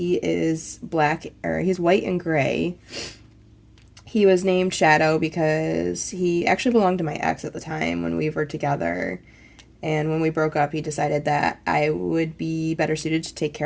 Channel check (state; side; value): identical; both; correlation 1.00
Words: is black, or he's white and gray. He was named Shadow because he actually belonged to my ex at the time when we were together. And when we broke up, he decided that I would be better suited to take